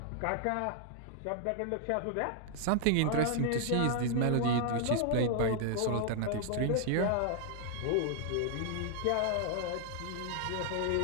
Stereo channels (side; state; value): both; different; correlation 0.00